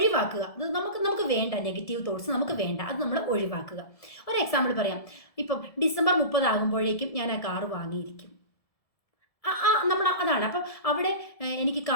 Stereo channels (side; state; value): right; late; 1.7 ms